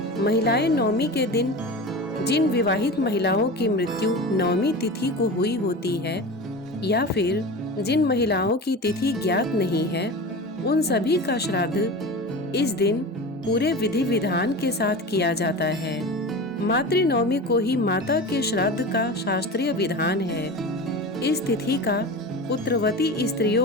महिलाएं नवमी के दिन जिन विवाहित महिलाओं की मृत्यु नवमी तिथि को हुई होती है, या फिर जिन महिलाओं की तिथि ज्ञात नहीं है, उन सभी का श्राद्ध इस दिन पूरे विधि विधान के साथ किया जाता है। मातृनवमी को ही माता के श्राद्ध का शास्त्रीय विधान है। इस तिथि का पुत्रवती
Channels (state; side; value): normal; both; correlation 0.30